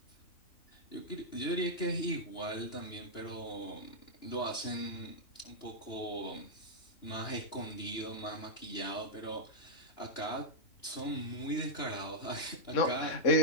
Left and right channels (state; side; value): late; right; 2.9 ms